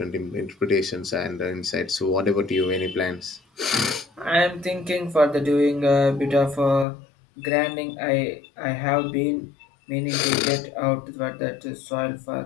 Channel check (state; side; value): drops out; right; at 6.9 s